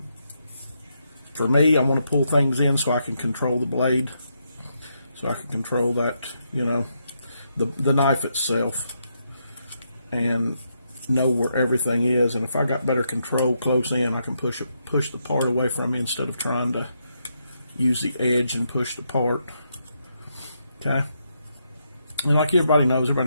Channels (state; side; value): inverted; both; correlation -0.80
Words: For me, I want to pull things in so I can control the blade, so I can control that, you know, the knife itself, and know where everything is. And if I got better control close in, I can push the part away from me instead of trying to use the edge and push the part. Okay. And like everybody knows